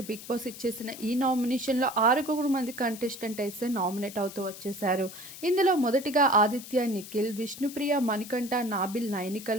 బిగ్ బాస్ ఇచ్చేసిన ఈ నామినేషన్లో 6 మంది కంటెస్టెంట్ అయితే నామినేట్ అవుతూ వచ్చేశారు. ఇందులో మొదటిగా ఆదిత్య, నిఖిల్, విష్ణుప్రియ, మణికంఠ, నాబిల్,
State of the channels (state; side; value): noise; left; hiss, 14 dB below the sound